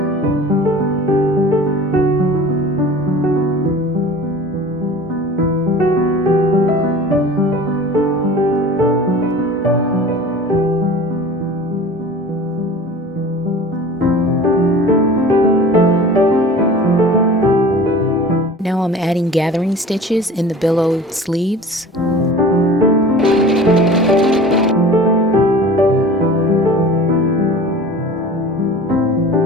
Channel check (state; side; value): normal; both; correlation 0.40